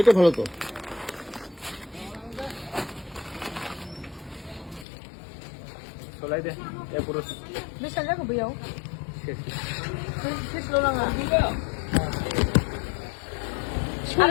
এটা ভালো তো চলাই দে এ পুরো বেশ আগে কবে যাও শেষ লো না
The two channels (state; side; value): drops out; right; at 4.9 s